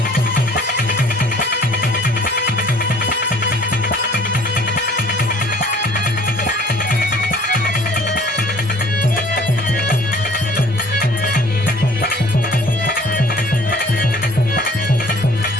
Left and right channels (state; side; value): normal; both; correlation 0.53